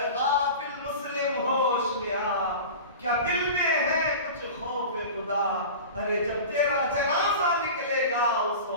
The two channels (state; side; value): inverted; both; correlation -0.33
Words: غافل مسلم ہوش میں آ، کیا دل میں ہے کچھ خوف خدا؟ ارے جب تیرا جنازہ نکلے گا اس